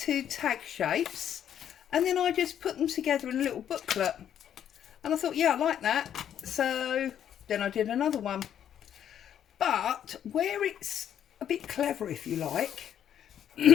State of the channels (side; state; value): right; quieter; 9.8 dB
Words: tag shapes, and then I just put them together in a little booklet, and I thought, yeah, I like that. So then I did another one. But where it's a bit clever, if you like,